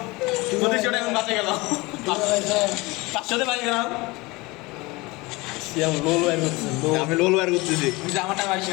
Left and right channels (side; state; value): right; quieter; 23.4 dB